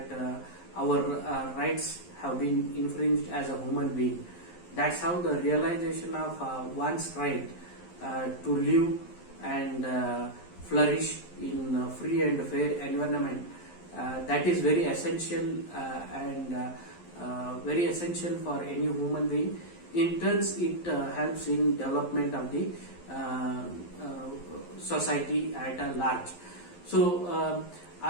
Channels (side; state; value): right; late; 11 ms